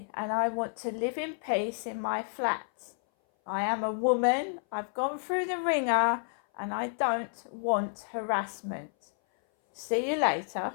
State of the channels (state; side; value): silent; right; 58 dB below the other